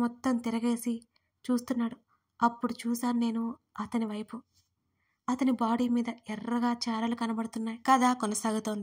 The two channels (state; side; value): identical; both; correlation 1.00